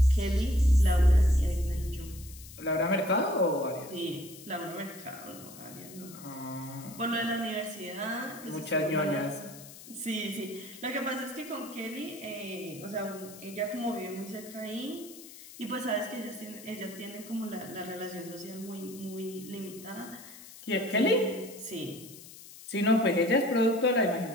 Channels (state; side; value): noise; left; hiss, 17 dB below the sound